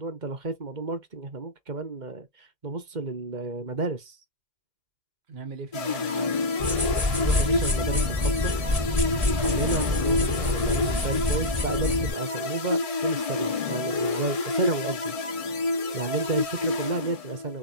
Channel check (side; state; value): left; late; 1.6 ms